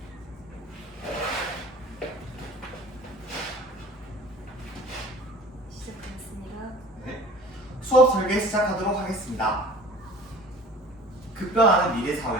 시작하겠습니다. 네. 수업 설계 시작하도록 하겠습니다. 급변하는 미래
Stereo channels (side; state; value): both; normal; correlation 0.44